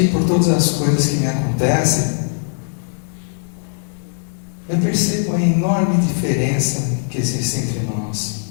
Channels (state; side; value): silent; right; digital silence